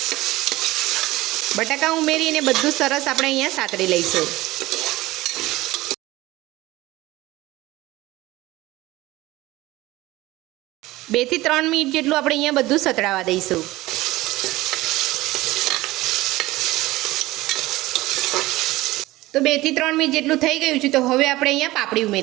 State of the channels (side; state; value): left; quieter; 18.5 dB